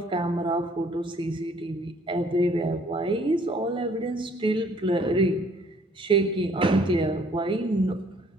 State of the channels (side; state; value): both; normal; correlation 0.60